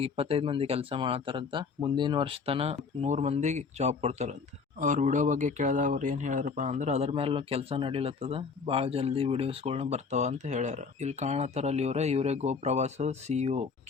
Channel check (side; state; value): right; quieter; 5.2 dB